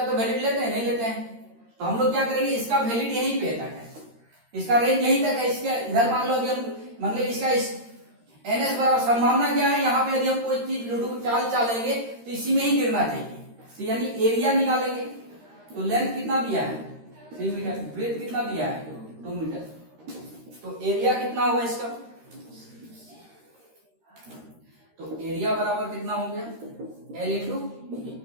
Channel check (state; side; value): late; left; 13 ms